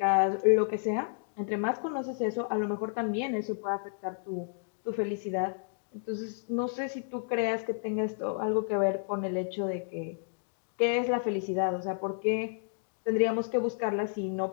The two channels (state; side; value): silent; right; digital silence